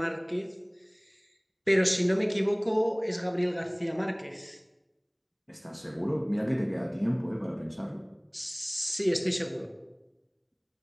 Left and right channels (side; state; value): both; identical; correlation 1.00